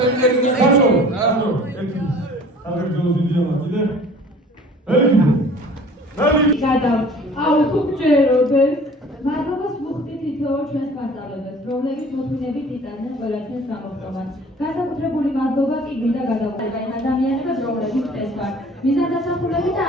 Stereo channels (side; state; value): both; normal; correlation 0.48